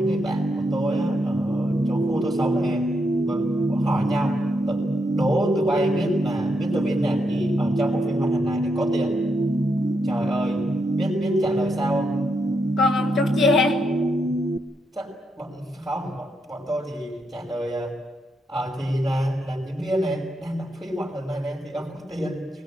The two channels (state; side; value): normal; both; correlation 0.81